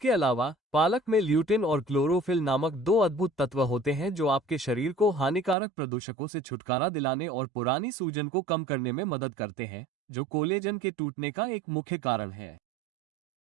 अलावा पालक में ल्यूटिन और क्लोरोफिल नामक दो अद्भुत तत्व होते हैं जो आपके शरीर को हानिकारक प्रदूषकों से छुटकारा दिलाने और पुरानी सूजन को कम करने में मदद करते हैं, जो कोलेजन के टूटने का एक मुख्य कारण है।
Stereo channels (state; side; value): drops out; left; at 5.6 s